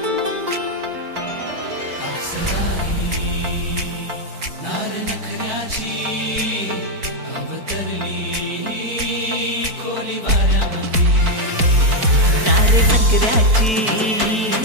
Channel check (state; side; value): late; left; 4.5 ms